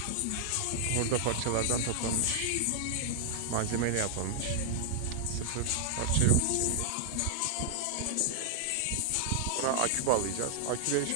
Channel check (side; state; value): both; different; correlation 0.00